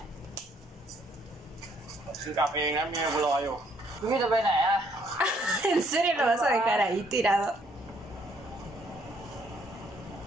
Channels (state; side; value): normal; both; correlation 0.67